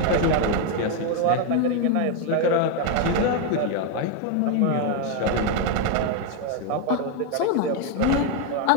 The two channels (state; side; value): different; both; correlation 0.01